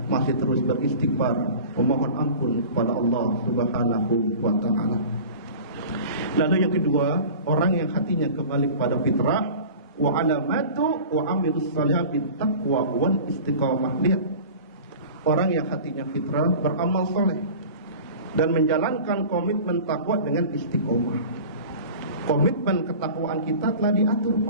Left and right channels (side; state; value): both; inverted; correlation -0.39